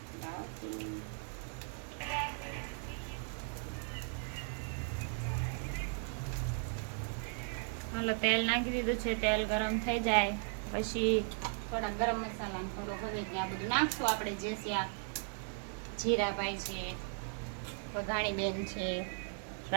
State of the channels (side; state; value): left; silent; 53 dB below the other